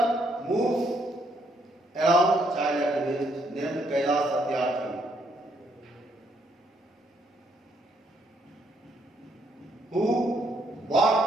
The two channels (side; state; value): both; normal; correlation 0.72